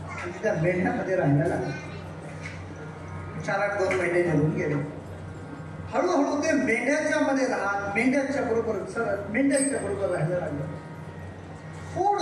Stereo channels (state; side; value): identical; both; correlation 1.00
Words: आणि त्या मेंढ्यामध्ये राहायला लागलं. 4-8 महिने निघून गेले. हळूहळू ते मेंढ्याच्या मध्ये राहत मेंढ्यांच्या बरोबर राहायला लागलं.